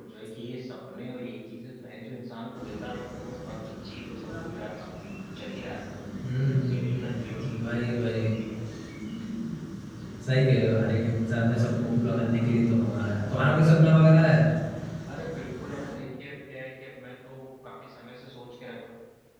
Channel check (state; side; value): identical; both; correlation 1.00